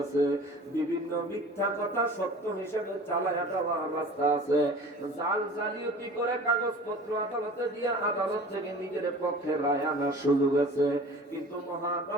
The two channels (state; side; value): normal; both; correlation 0.42